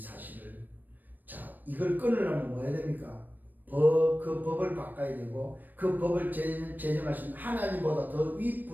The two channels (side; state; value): left; late; 0.088 ms